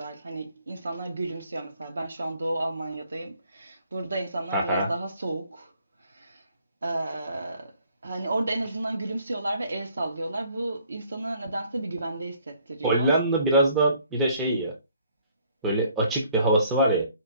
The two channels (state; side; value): inverted; both; correlation -0.62